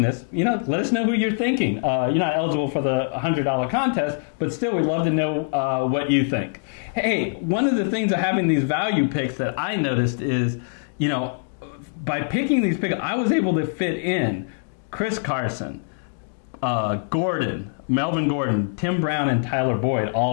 this, let us know who you're thinking. You're not eligible for the $100 contest, but still we'd love to know what you think. Hey, one of the things of having these value picks that I noticed is, by picking these picks, I was able to fit in Chris Carson, Gordon, Melvin Gordon, Tim Brown, and Tyler Boyd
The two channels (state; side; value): silent; right; digital silence